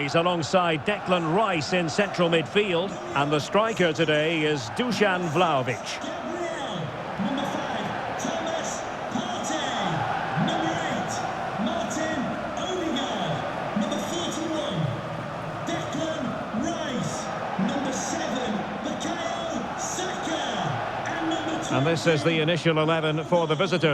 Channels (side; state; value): both; identical; correlation 1.00